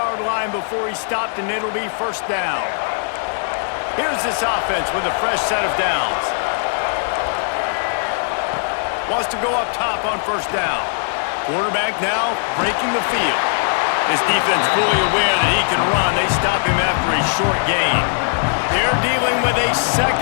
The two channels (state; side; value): silent; right; digital silence